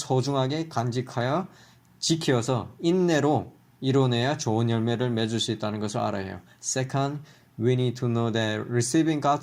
간직하여 지켜서 인내로 이뤄내야 좋은 열매를 맺을 수 있다는 것을 알아야 해요. Second, we need to know that receiving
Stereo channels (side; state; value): both; identical; correlation 1.00